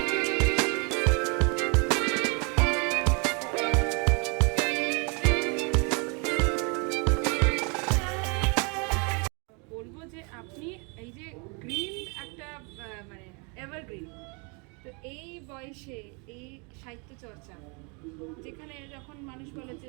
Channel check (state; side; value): quieter; left; 33.4 dB